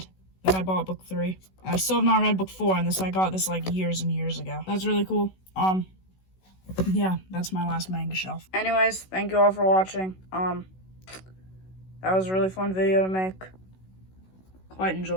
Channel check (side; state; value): right; late; 16 ms